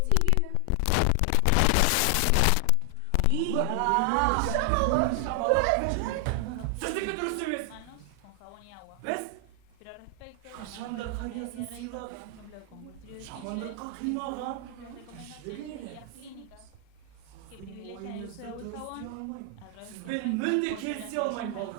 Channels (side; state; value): both; different; correlation 0.00